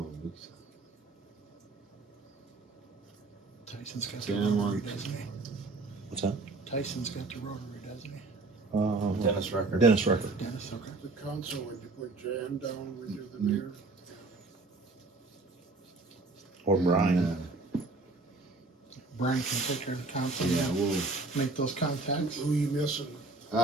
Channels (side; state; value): left; quieter; 3.5 dB